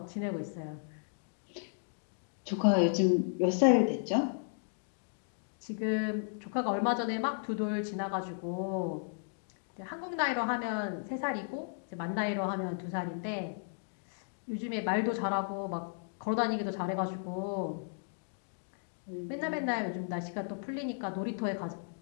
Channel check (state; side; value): silent; right; digital silence